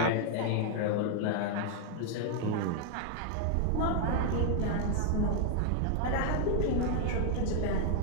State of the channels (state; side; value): different; both; correlation 0.00